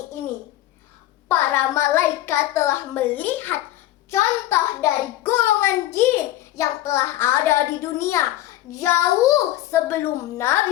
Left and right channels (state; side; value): quieter; right; 14.7 dB